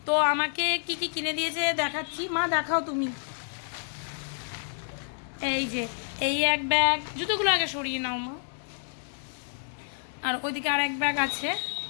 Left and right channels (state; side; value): silent; right; digital silence